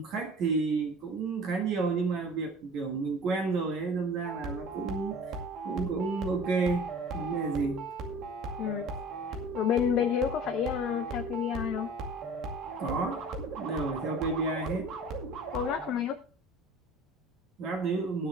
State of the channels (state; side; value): normal; both; correlation 0.42